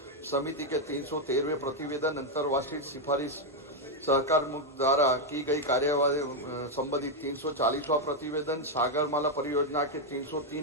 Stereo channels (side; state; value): both; normal; correlation 0.01